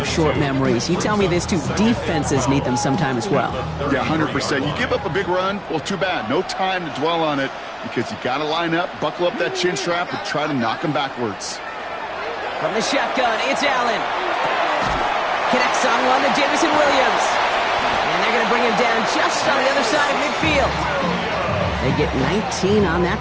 short memories. You tell me this, too. Defenses need them sometime as well. Yeah, 100%. You give up a big run, well, too bad. No time to dwell on it because you got to line up, buckle up that chin strap, and try to knock them backwards. From the shotgun, it's Allen. Connects on one to Jamison Williams. And they're going to bring him down just on the other side of midfield. They get 19 on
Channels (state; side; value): identical; both; correlation 1.00